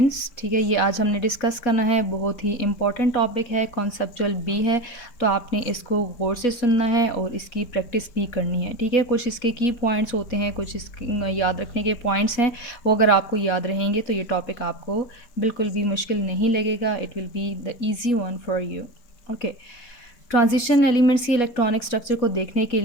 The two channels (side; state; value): right; late; 4.1 ms